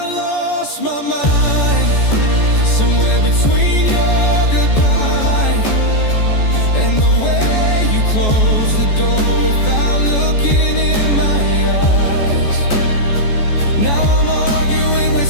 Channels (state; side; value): late; right; 14 ms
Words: lost my mind somewhere between your goodbye and the way you closed the door without looking in my eyes. Now I'm arguing with